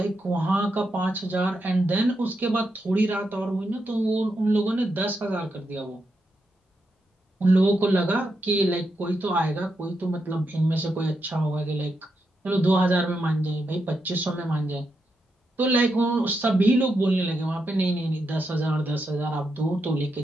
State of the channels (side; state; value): both; normal; correlation 0.84